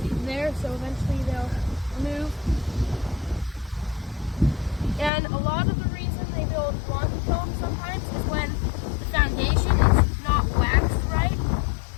there, so eventually they'll move. And a lot of the reason they build wonky comb sometimes is when the foundation is not waxed right.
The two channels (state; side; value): drops out; right; at 5.1 s